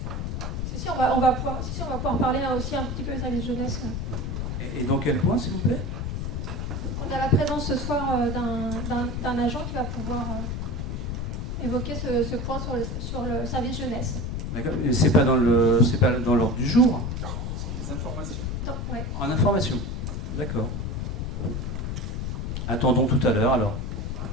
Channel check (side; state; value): left; noise; rumble, 3 dB below the sound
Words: Si, on va pouvoir parler là aussi un petit peu de service jeunesse. Et dans quel point, s'il vous plaît? On a la présence ce soir d'un agent qui va pouvoir évoquer ce point sur le service jeunesse. D'accord, mais c'est pas dans l'ordre du jour? C'est des informations. Non, ouais. En information. D'accord. Attendons tout à l'heure alors.